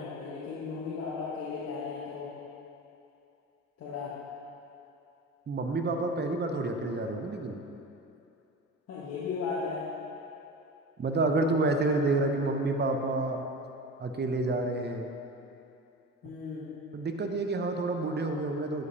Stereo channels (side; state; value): both; normal; correlation 0.32